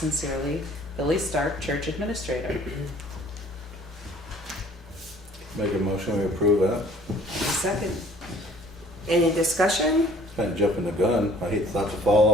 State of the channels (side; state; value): both; normal; correlation 0.55